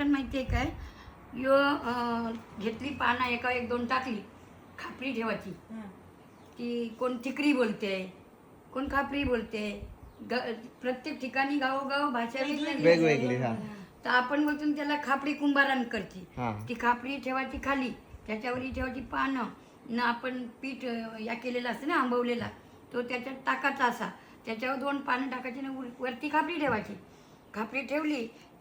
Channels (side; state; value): both; identical; correlation 1.00